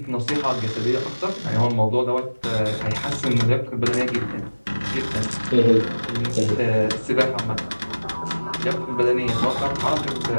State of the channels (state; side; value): inverted; both; correlation -1.00